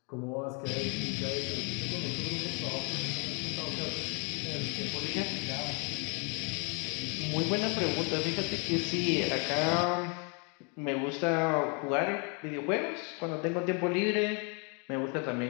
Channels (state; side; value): quieter; right; 35.4 dB